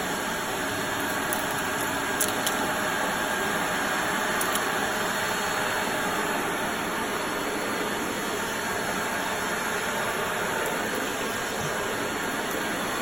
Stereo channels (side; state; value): left; noise; rumble, 16 dB below the sound